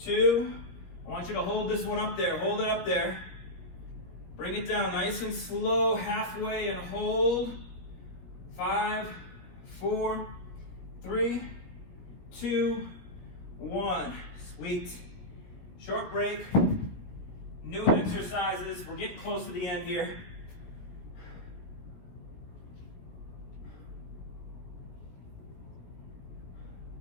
I want you to hold this one up there. Hold it up there. Bring it down nice and slow, halfway, and hold. 5, 4, 3, 2, 1. Sweet. Short break. New exercises. We're getting close to the end here.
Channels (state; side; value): late; right; 17 ms